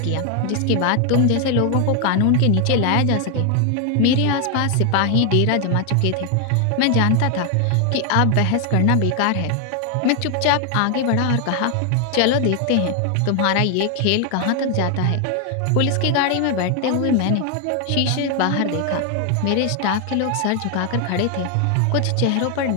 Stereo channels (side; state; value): both; different; correlation 0.01